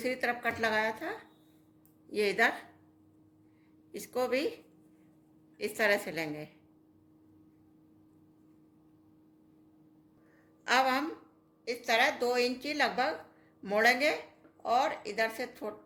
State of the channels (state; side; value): identical; both; correlation 1.00